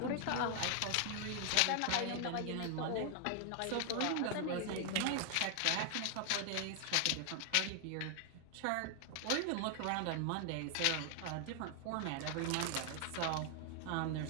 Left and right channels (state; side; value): different; both; correlation 0.00